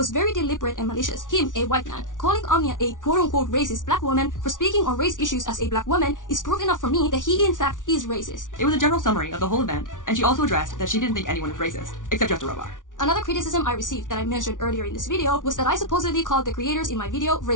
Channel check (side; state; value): right; late; 0.88 ms